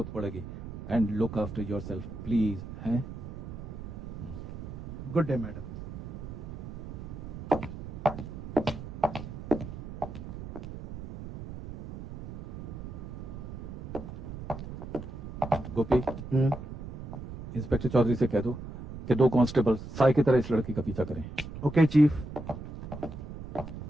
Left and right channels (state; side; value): noise; right; rumble, 10 dB below the sound